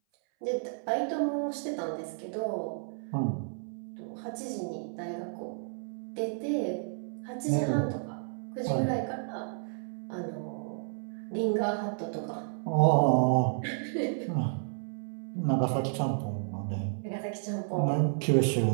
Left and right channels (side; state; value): left; silent; 57 dB below the other